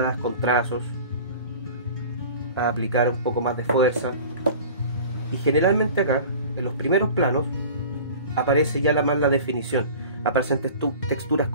con trazos, a aplicar un poco más de fuerza. Y generalmente acá, en los primeros planos, aparece ya más la definición. Aparecen texturas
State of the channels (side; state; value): both; inverted; correlation -0.41